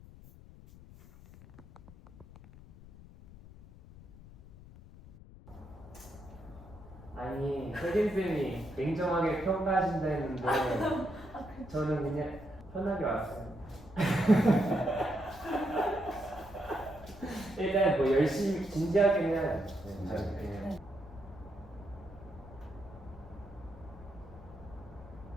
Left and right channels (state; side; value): noise; left; rumble, 18 dB below the sound